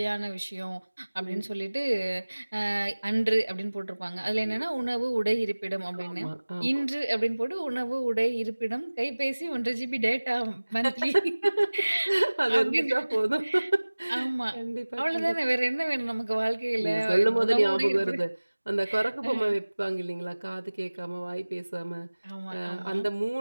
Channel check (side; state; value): both; inverted; correlation -1.00